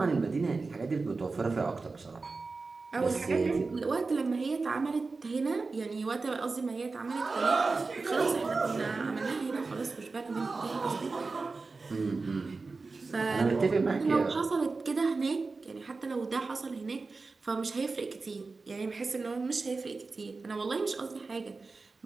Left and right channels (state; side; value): quieter; left; 4.0 dB